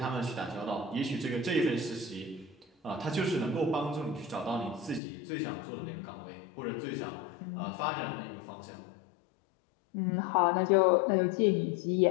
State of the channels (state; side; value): drops out; right; at 5.0 s